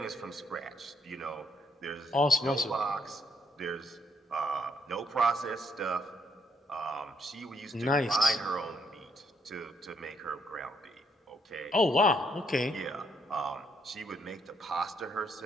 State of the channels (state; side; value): normal; both; correlation 0.72